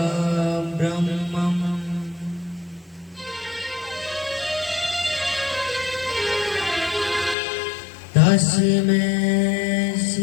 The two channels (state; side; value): drops out; right; at 7.4 s